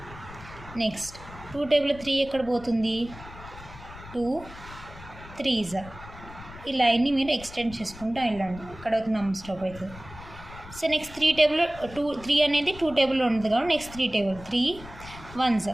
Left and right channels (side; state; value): left; noise; rumble, 16 dB below the sound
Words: నెక్స్ట్ 2 టేబుల్లో 3 ఎక్కడ పోతుంది, 2 3. ఈ లైన్ని మీరు ఎక్స్టెండ్ చేసుకుంటూ వెళ్ళండి. ఇక్కడ ఒక నెంబర్ స్టాప్ అవుతుంది. సో నెక్స్ట్ 3 టేబుల్లో 3 అనేది 2 టేబుల్లో ఉంటుంది కాబట్టి నెక్స్ట్ 3 టేబుల్ 3 1s.